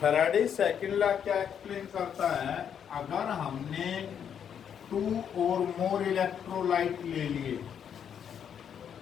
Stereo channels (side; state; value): right; quieter; 8.3 dB